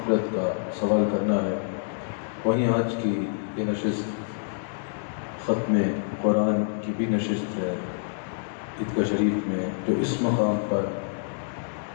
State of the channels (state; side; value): silent; right; digital silence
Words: کا سوال کرنا ہے. وہیں آج کی یہ نشست ختم قرآن کی بھی نشست ہے عیدگاہ شریف میں، جو اس مقام پر